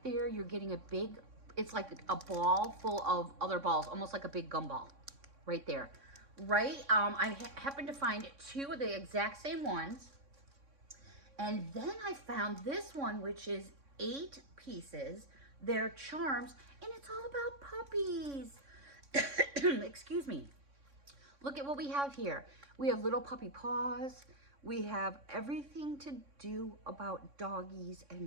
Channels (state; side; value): late; left; 3.6 ms